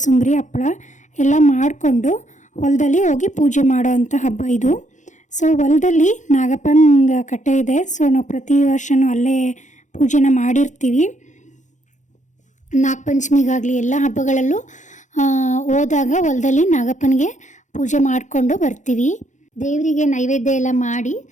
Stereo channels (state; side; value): late; right; 0.35 ms